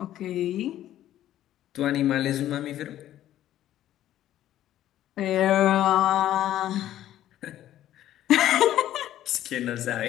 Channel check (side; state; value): right; quieter; 12.7 dB